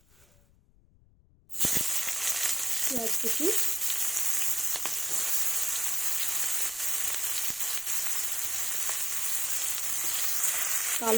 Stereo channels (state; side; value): noise; left; rumble, 30 dB below the sound